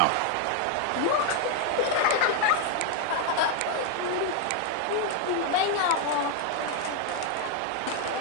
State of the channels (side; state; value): both; different; correlation 0.01